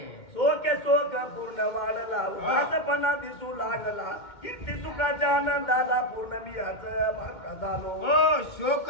सोके सोक पूर्ण वाढला उदासपणा दिसू लागला कीर्ती सुखाच्या आनंदाला पूर्ण मी याच मार्ग झालो. शोक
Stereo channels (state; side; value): late; right; 2.2 ms